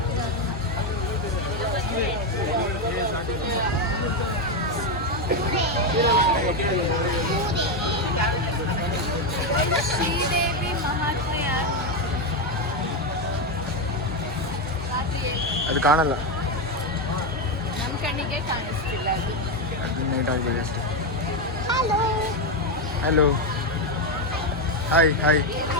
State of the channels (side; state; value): both; normal; correlation 0.08